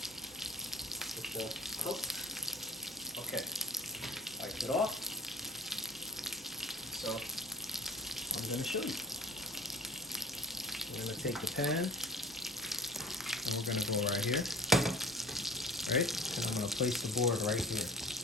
with the cook. Okay. Wipe it off. So I'm going to show you. We're going to take the pan and we're going to go right here. Right? And I'm going to place the board right here.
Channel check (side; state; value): both; normal; correlation 0.46